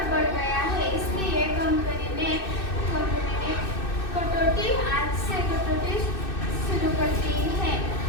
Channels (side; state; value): right; late; 2.6 ms